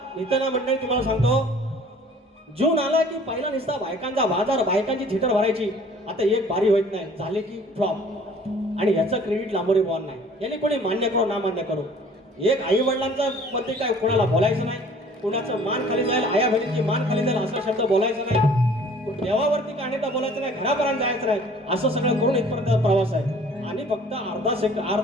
नितना मंडळी तुम्हाला सांगतो, जून आला की पहिला निसता बायकांचा बाजार, बायकांची थिटर भरायची. आता एक बारी होत नाही, झाले की फ्लॉप. आणि ह्याचं क्रेडिट लांबोरी बॉल नाही, याने कोणी मान्य करो ना मान्य करो. एक आई वडिलांचा मध्ये काय कोणाला बोलायचं नाही, कुणाचं मान खाली जाईल, आया बहिणीची मान खाली जाईल असा शब्द बोलायचं नाही, देवावरती काढण्याचा बोलायचं नाही, घरापर्यंत जायचं नाही. असं सगळं करून इथपर्यंत प्रवास आहे. आणि फक्त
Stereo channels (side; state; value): both; normal; correlation 0.52